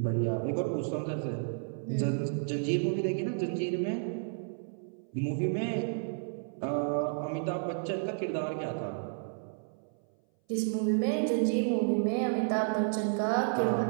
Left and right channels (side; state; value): left; silent; 57 dB below the other